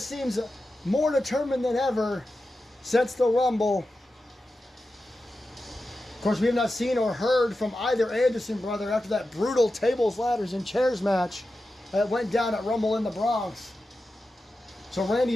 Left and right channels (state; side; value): normal; both; correlation 0.92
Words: seems more determined than ever since the Rumble. Of course, we have not seen or heard from either Anderson brother after that brutal tables, ladders, and chairs match that went down at Rumble in the Bronx. So